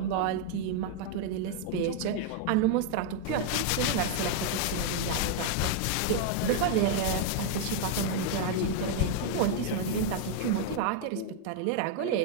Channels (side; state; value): both; different; correlation 0.00